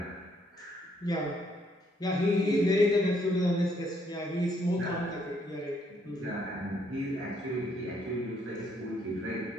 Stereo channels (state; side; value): normal; both; correlation 0.70